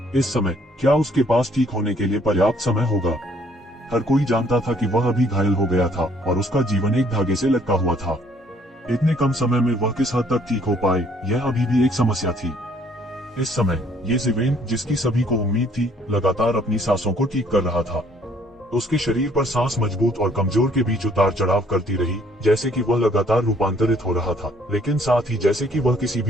इस समय क्या उसके पास ठीक होने के लिए पर्याप्त समय होगा? हर कोई जानता था कि वह अभी घायल हो गया था और उसका जीवन एक धागे से लटका हुआ था। इतने कम समय में वह किस हद तक ठीक हो पाए, यह अभी भी एक समस्या थी। इस समय ये ज़िवेन, जिसकी सभी को उम्मीद थी, लगातार अपनी सांसों को ठीक कर रहा था। उसके शरीर पर सांस मजबूत और कमजोर के बीच उतार चढ़ाव करती रही, जैसे कि वह लगातार रूपांतरित हो रहा था, लेकिन साथ ही जैसे कि वह किसी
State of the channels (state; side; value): normal; both; correlation 0.62